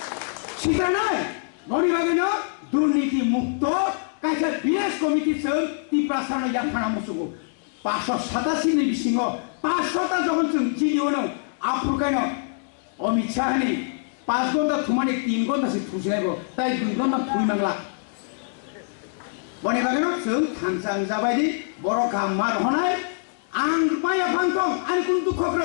सिटानाय गनि बागैनो दुर्नीति मुक्त कायसा बिएस कमिटि जों तिप्रासानो याखाना मुसुगो 587 नि बिसिङाव 500 ता जगन जों जिलियोनो आफुरकायनो अमित शाहनि 5 घन्टा थुमानि 3 घन्टासो थुसिनायबो ताइ 2 घन्टा थुइनांला बने बागैनो जों खानसां जाबायदि बर' गामार हनाय आं माया फांथं आनि कुन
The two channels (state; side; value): silent; right; digital silence